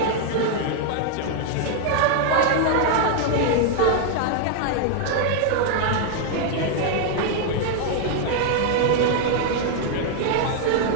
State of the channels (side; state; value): both; different; correlation 0.00